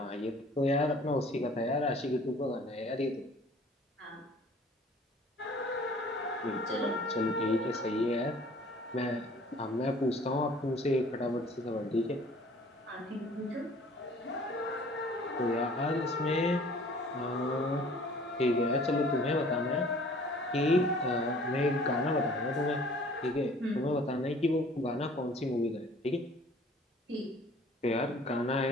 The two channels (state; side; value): normal; both; correlation 0.52